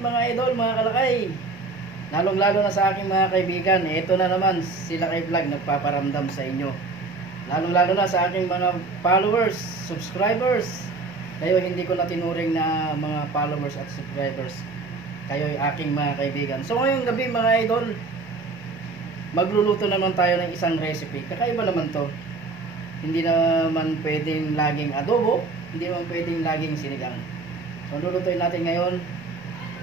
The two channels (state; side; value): quieter; left; 3.9 dB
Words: mga idol, mga kalakay. Lalong-lalo na sa aking mga kaibigan. Ito na naman, sila kay vlog nagpaparamdam sa inyo. Lalong-lalo na sa aking mga followers, subscribers. Kayo hindi ko na tinuring na mga followers at subscribers. Kayo ay aking mga kaibigan. So ngayong gabi mga idol, magluluto naman tayo ng isang recipe. Kakaiba naman to. Hindi naman pwedeng laging adobo, hindi naman pwedeng laging sinigang. So lulutuin natin ngayon